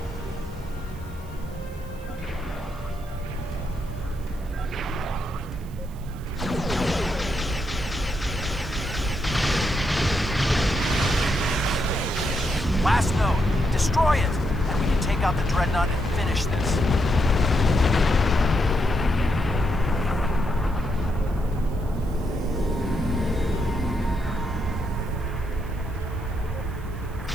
Last node, destroy it, and we can take out the Dreadnought and finish this.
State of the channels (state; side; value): noise; right; hiss, 25 dB below the sound